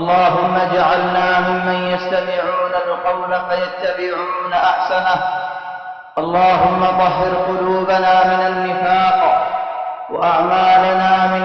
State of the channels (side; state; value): both; identical; correlation 1.00